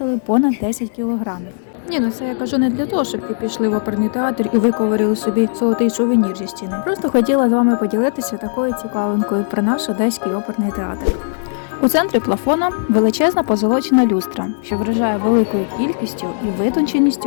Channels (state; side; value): silent; right; digital silence